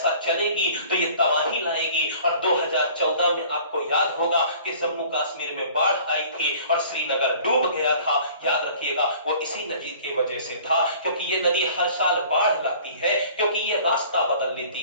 चलेगी तो ये तबाही लाएगी। और 2014 में आपको याद होगा कि जम्मू कश्मीर में बाढ़ आई थी और श्रीनगर डूब गया था। याद रखिएगा वो इसी नदी की वजह से था, क्योंकि ये नदी हर साल बाढ़ लाती है, क्योंकि ये रास्ता बदल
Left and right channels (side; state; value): both; inverted; correlation -0.50